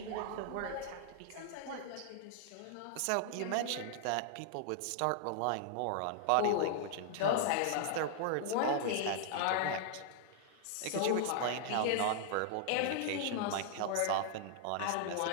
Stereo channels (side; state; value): both; different; correlation -0.01